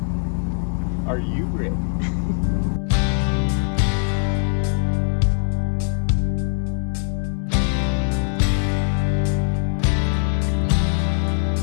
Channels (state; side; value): silent; right; digital silence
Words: Are you ready?